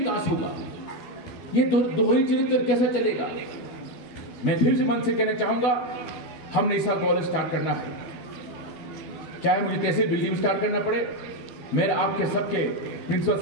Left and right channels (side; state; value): right; late; 12 ms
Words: होगा? ये दोहरी चरित्र कैसे चलेगा? मैं फिर से मन से कहना चाहूंगा, हमने इस साल कॉलेज स्टार्ट करना है, चाहे मुझे तहसील बिल्डिंग में स्टार्ट करना पड़े। मेरा आपके सबके प्रिंसिपल